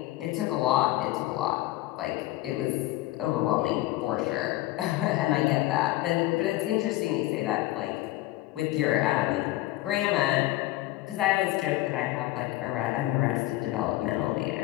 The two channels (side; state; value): right; quieter; 17.2 dB